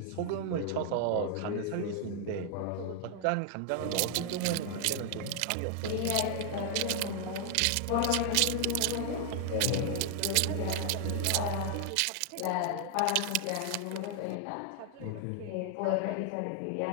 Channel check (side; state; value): both; different; correlation 0.00